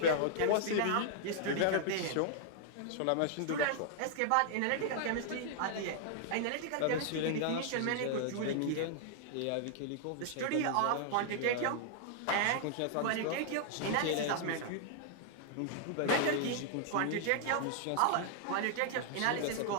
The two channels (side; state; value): both; different; correlation -0.01